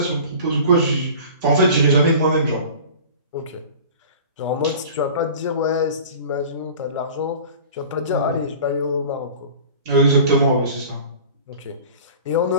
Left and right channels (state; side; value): inverted; both; correlation -0.41